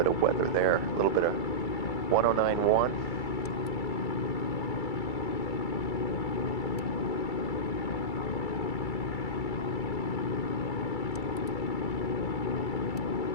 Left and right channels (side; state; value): right; late; 2.3 ms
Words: of weather there. A little bit of 109.1.